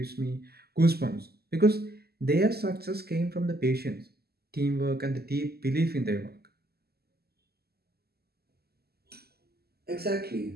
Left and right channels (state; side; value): late; left; 0.46 ms